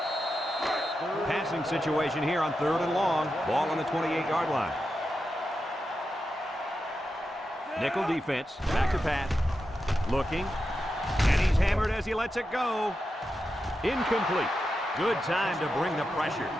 Passing situation here on 3rd and long. Ball on the 28-yard line. Nickel defense. Back to pass. Looking. And he's hammered as he lets it go. Incomplete. Good time to bring the pressure.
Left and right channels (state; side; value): normal; both; correlation 0.89